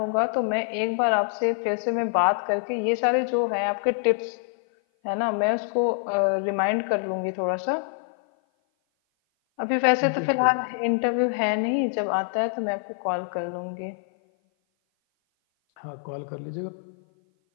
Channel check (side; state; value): right; silent; 56 dB below the other